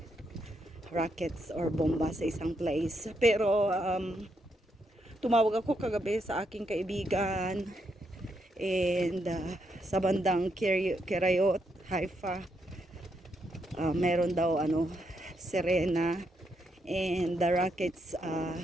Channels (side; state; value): both; normal; correlation 0.79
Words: rockets or bomba sa isang place. Pero tumawag ako kagabi sa aking kaibigan And sa bandang Kirayot, Haifa, meron daw Serena, and the rockets